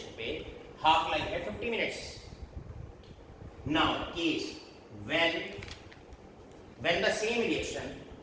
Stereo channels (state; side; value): identical; both; correlation 1.00